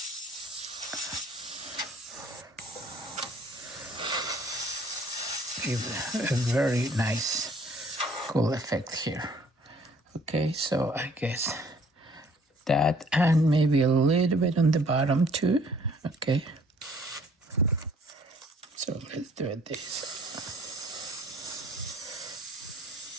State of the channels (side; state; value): both; normal; correlation 0.58